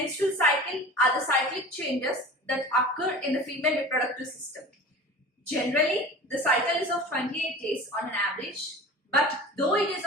cycle are the cyclic changes that occur in the female reproductive system. Generally, the cycle is of 28 days on an average, but though it is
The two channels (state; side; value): normal; both; correlation 0.37